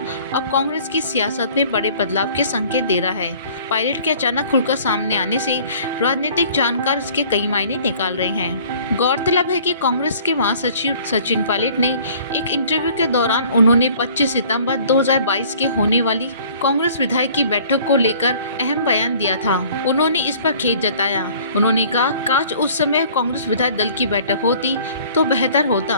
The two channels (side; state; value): both; inverted; correlation -0.52